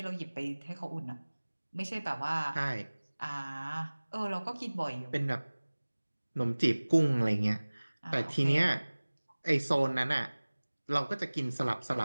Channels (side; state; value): both; inverted; correlation -1.00